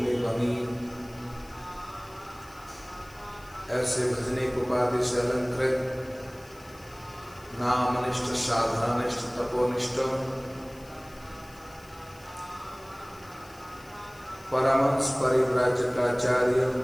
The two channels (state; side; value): noise; left; hiss, 24 dB below the sound